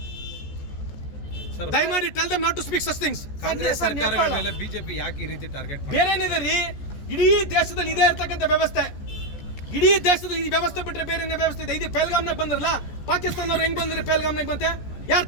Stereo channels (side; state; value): right; late; 14 ms